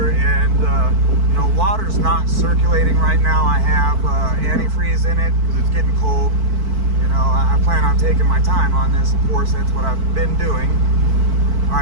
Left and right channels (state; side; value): late; left; 4.5 ms